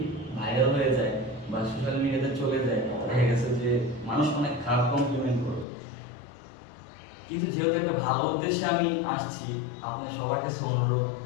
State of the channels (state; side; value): drops out; right; at 5.7 s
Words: ভাইরাল হয়ে যায় বা সোশ্যাল মিডিয়াতে চলে যায়, দেখা গেছে যে মানুষ অনেক খারাপ কমপ্লিমেন্ট করবে। কিন্তু যেহেতু একটা ভালো উদ্দেশ্যে আমি আসছি, আপনাদের সবার কাছে অনুরোধ,